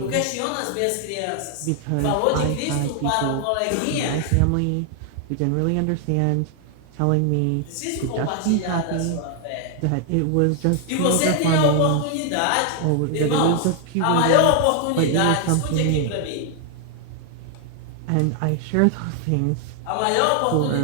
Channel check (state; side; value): different; both; correlation 0.00